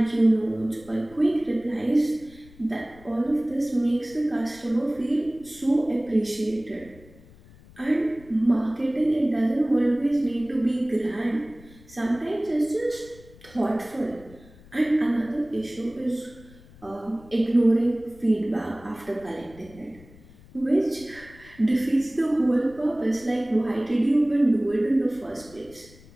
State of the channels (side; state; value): left; noise; rumble, 23 dB below the sound